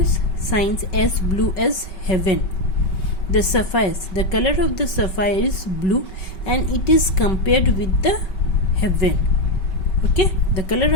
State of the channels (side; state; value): right; late; 5.2 ms